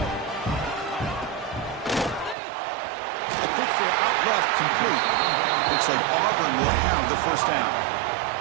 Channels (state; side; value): drops out; left; at 2.4 s